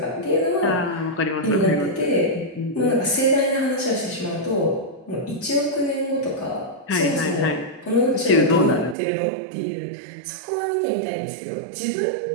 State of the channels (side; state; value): left; drops out; at 9.0 s